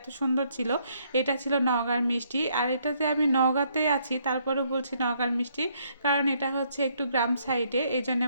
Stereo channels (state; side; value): inverted; both; correlation -0.70